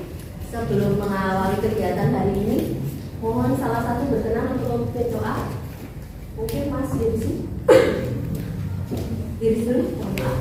Sebelum mengawali kegiatan hari ini, mohon salah satu berkenan untuk memimpin doa. Mungkin Mas Dirsi. Diri dulu, mohon maaf.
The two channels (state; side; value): identical; both; correlation 1.00